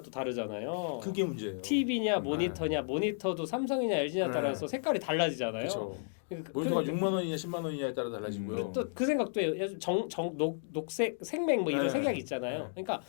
또 다르잖아요. 그게 문제예요. TV냐 모니터냐 모니터도 삼성이냐 LG냐 따라서 색깔이 달라지잖아요. 그렇죠. 모니터가 6만 원이냐 10만 원이냐에 따라 달라지고요. 또 그 생각도 해요. 녹색, 생맥 뭐 이런 색이 있잖아요. 그러니까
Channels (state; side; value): silent; right; digital silence